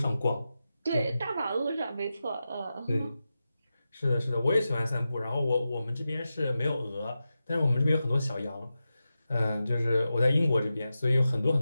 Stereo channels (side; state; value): both; inverted; correlation -0.91